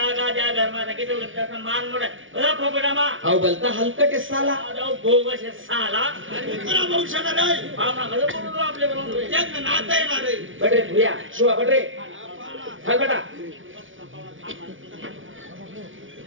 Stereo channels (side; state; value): left; late; 0.57 ms